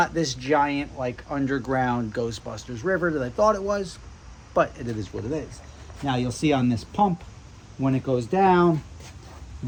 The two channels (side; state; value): both; identical; correlation 1.00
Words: this giant like underground Ghostbusters river that I thought it was, but it is what it is. Now you'll see on this pump, when it goes down,